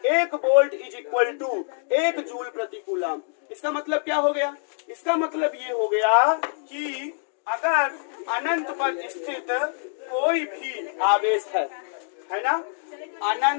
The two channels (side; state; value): right; silent; 62 dB below the other